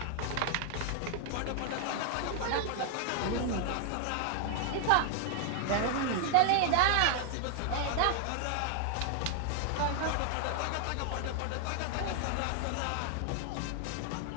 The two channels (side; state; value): both; different; correlation 0.00